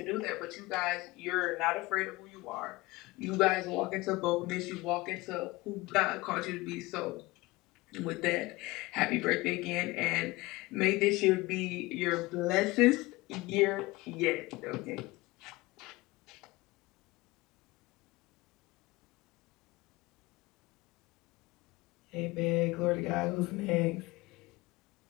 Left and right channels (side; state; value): right; quieter; 21.4 dB